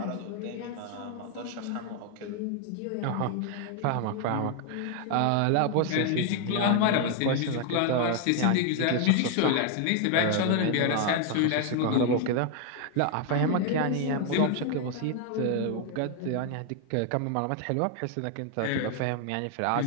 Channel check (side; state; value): both; different; correlation 0.00